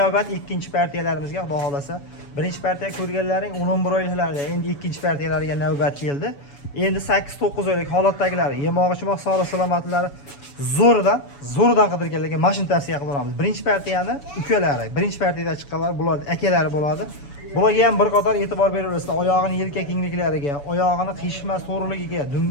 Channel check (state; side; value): late; right; 7.1 ms